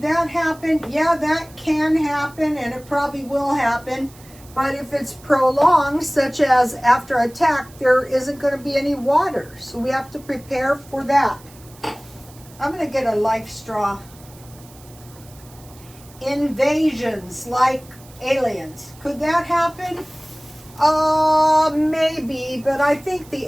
that happen? Yeah, that can happen, and it probably will happen. But if it's prolonged, such as after attack, there isn't going to be any water. So we have to prepare for that. I'm going to get a life straw. Invasions, like aliens. Could that happen? Maybe, but I think the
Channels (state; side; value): noise; right; hiss, 24 dB below the sound